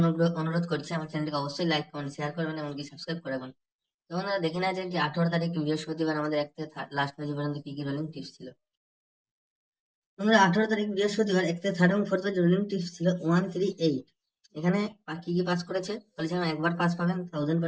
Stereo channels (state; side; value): identical; both; correlation 1.00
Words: অনুরোধ করছি আমার চ্যানেলটিকে অবশ্যই লাইক কমেন্ট শেয়ার করবেন, এমনকি সাবস্ক্রাইব করে রাখবেন। তো বন্ধুরা, দেখে নেওয়া যায় যে 18 তারিখ বৃহস্পতিবার আমাদের 1 থেকে লাস্ট বাজি পর্যন্ত কি কি রোলিং টিপস ছিল। বন্ধুরা, 18 তারিখ বৃহস্পতিবার 1 থেকে থার্ড এবং ফোর্থ রোলিং টিপস ছিল 138। এখানে কি কি পাস করেছে বলেছিলাম, একবার পাস পাবেন,